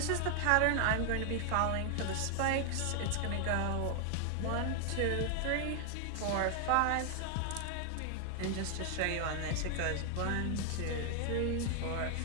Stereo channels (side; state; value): both; different; correlation 0.00